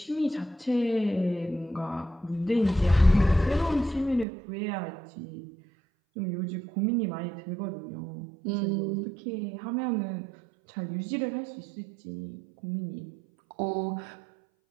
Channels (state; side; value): drops out; left; at 4.2 s